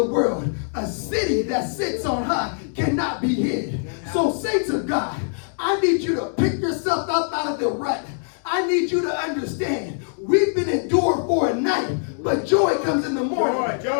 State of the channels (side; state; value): right; silent; digital silence